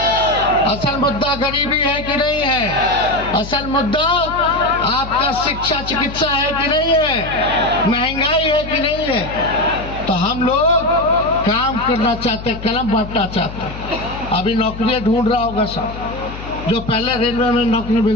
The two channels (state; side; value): noise; left; hum, 11 dB below the sound